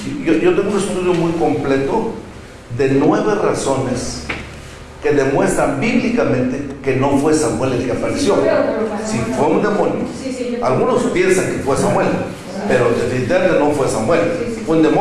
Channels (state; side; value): identical; both; correlation 1.00